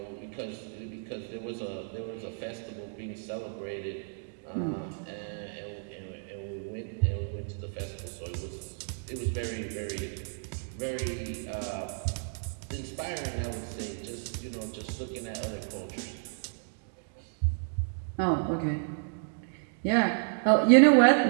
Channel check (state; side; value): silent; left; digital silence